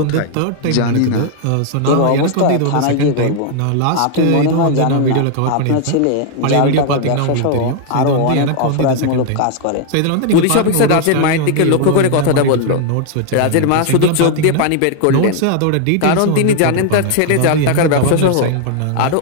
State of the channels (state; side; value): different; both; correlation 0.00